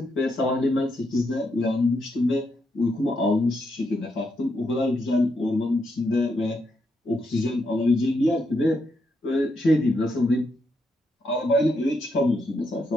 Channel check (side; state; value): both; normal; correlation 0.80